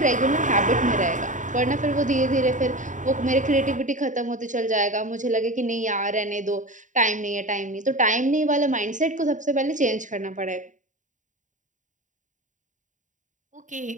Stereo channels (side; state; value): left; late; 0.36 ms